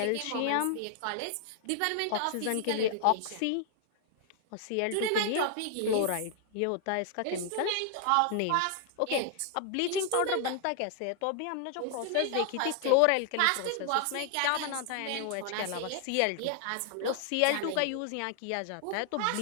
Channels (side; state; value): both; different; correlation 0.00